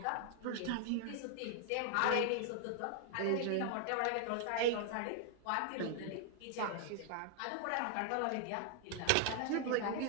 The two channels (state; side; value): different; both; correlation 0.00